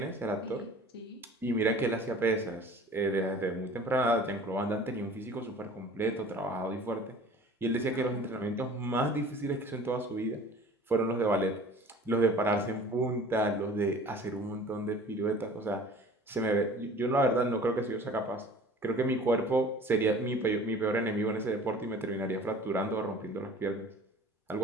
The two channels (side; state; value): both; normal; correlation 0.46